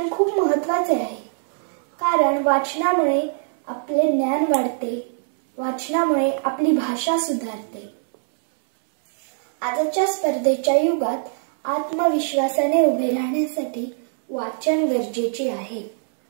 खूप महत्त्वाचे आहे, कारण वाचनामुळे आपले ज्ञान वाढते, वाचनामुळे आपली भाषा सुधारते. आजच्या स्पर्धेच्या युगात आत्मविश्वासाने उभे राहण्यासाठी वाचन गरजेचे आहे.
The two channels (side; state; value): left; silent; 63 dB below the other